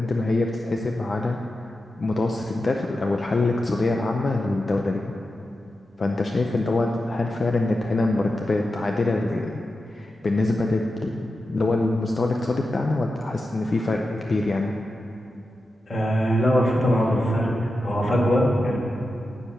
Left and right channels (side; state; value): both; normal; correlation 0.91